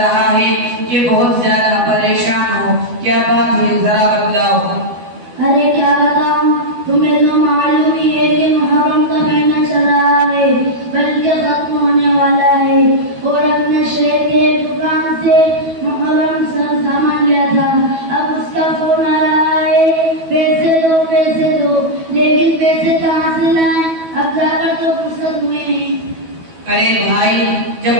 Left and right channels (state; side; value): late; left; 12 ms